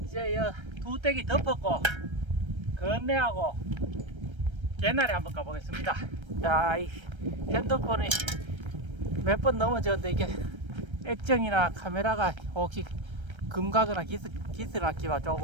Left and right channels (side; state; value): left; late; 1.3 ms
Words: 이제 두 떼기 덮었고 건네하고 개나리 한번 가보겠습니다. 자, 이 핸드폰이 몇 번 넘어졌는데 이게 액정이나 카메라가 혹시 금가거나 기스락기가